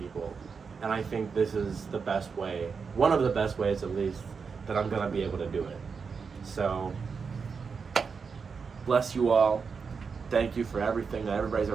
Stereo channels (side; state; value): left; quieter; 5.5 dB